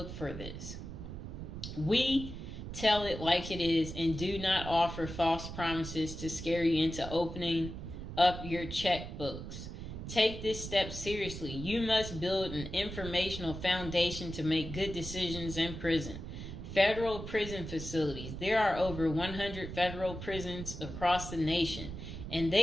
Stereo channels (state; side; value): noise; right; rumble, 8 dB below the sound